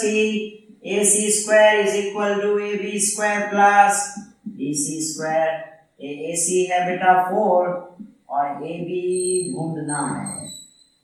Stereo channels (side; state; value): both; identical; correlation 1.00